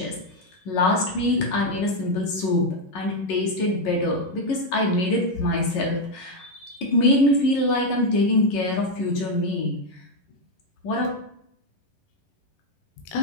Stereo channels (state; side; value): late; right; 11 ms